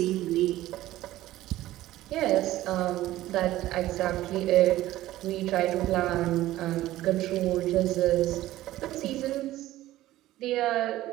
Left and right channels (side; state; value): left; quieter; 15.3 dB